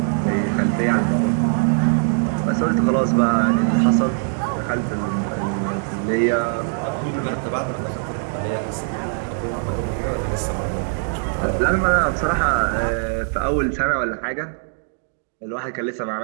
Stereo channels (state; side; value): silent; left; 57 dB below the other